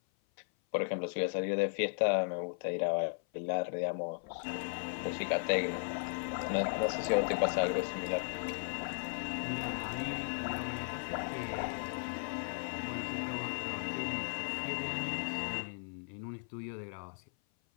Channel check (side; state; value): right; silent; 54 dB below the other